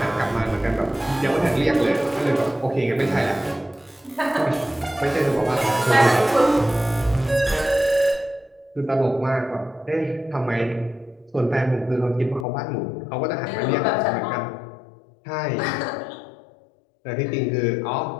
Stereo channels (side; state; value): right; drops out; at 12.5 s